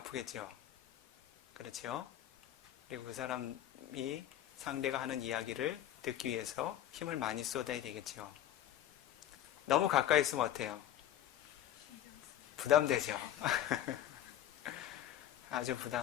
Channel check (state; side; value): quieter; right; 12.0 dB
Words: 그렇죠? 그리고 그 사람이 상대가 하는 이야기를 듣기 위해서 힘을 많이 쏟아야 되겠죠. 너무 가까이 있으면 어때요? 부담되죠. 아주